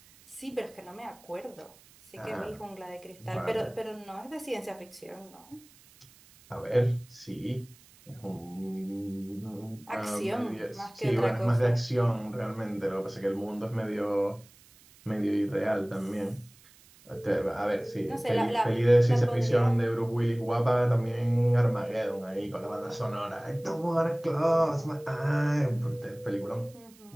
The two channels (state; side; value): noise; right; hiss, 26 dB below the sound